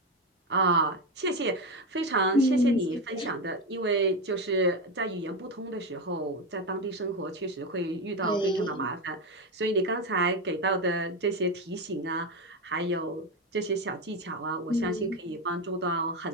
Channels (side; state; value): both; normal; correlation 0.14